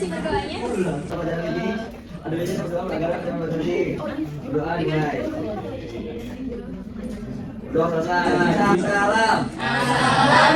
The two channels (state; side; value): identical; both; correlation 1.00